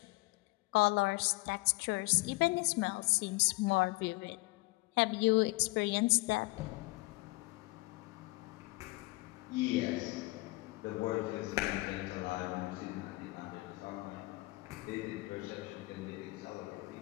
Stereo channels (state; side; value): quieter; right; 23.3 dB